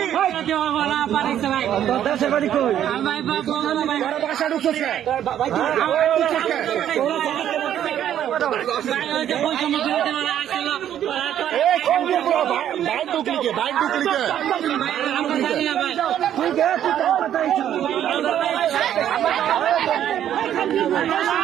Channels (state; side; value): quieter; left; 10.6 dB